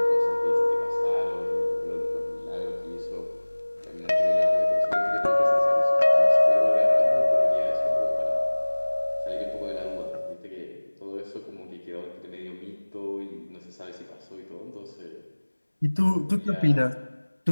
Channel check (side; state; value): both; inverted; correlation -1.00